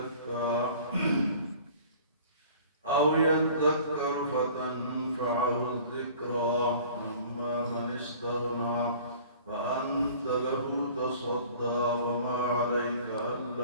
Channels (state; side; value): inverted; both; correlation -0.48